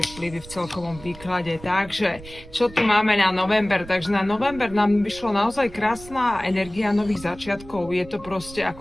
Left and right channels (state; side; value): noise; right; rumble, 18 dB below the sound